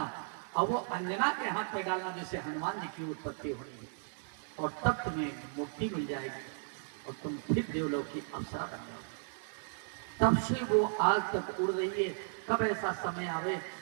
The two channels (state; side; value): silent; left; digital silence